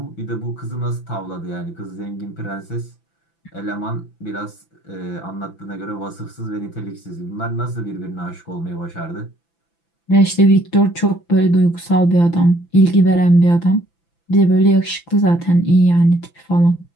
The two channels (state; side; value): late; right; 6.0 ms